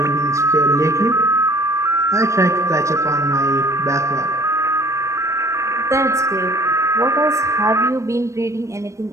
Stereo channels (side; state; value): left; late; 0.15 ms